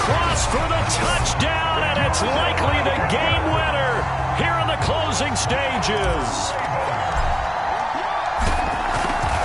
for the touchdown, and it's likely the game winner here in the closing stages.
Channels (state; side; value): identical; both; correlation 1.00